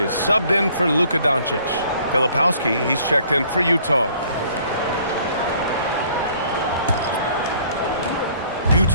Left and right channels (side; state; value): both; inverted; correlation -0.59